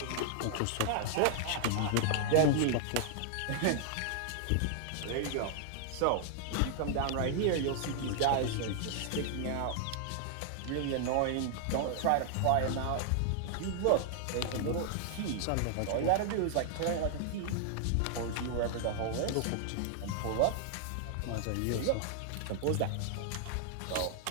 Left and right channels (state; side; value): different; both; correlation -0.01